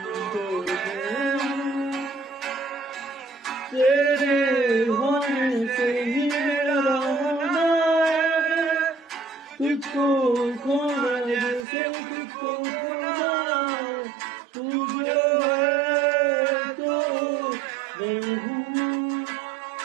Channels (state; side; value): drops out; left; at 11.7 s